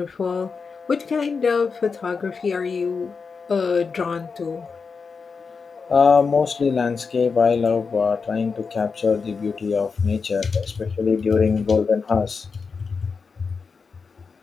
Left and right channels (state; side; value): quieter; right; 5.1 dB